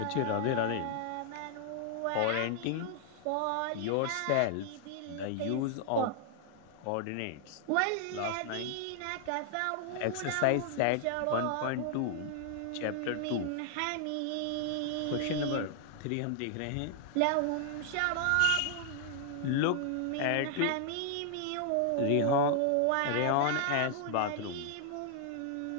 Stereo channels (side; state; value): both; different; correlation -0.01